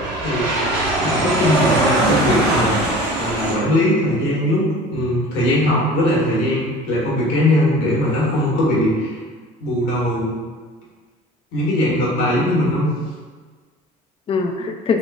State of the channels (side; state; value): both; normal; correlation 0.43